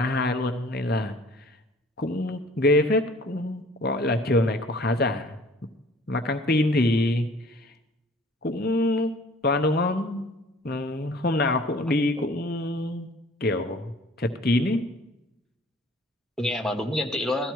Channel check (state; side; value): normal; both; correlation 0.52